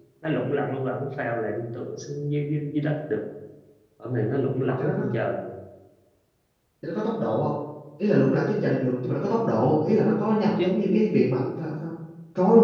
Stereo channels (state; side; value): identical; both; correlation 1.00